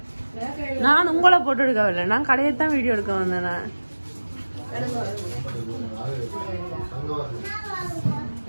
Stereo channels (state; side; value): inverted; both; correlation -1.00